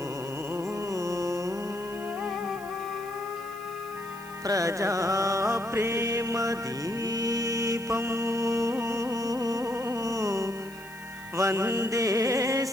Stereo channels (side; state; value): left; noise; hiss, 21 dB below the sound